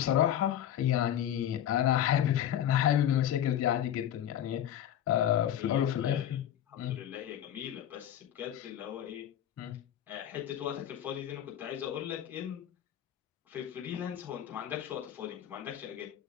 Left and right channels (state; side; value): quieter; right; 10.8 dB